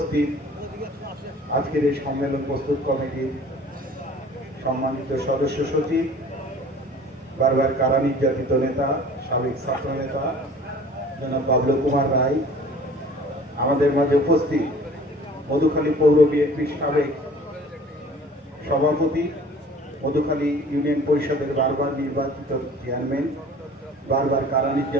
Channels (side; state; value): both; normal; correlation 0.47